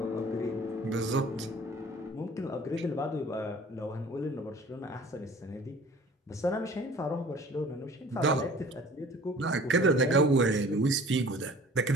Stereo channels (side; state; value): both; normal; correlation 0.48